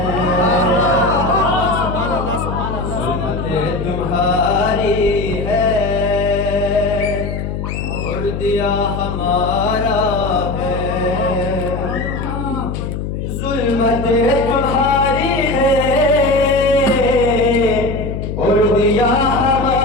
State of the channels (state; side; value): noise; left; hum, 4 dB below the sound